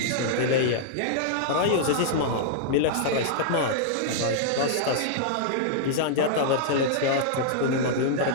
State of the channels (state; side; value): different; both; correlation -0.01